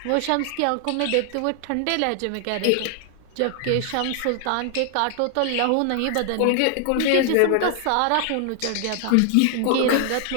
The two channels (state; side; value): different; both; correlation 0.00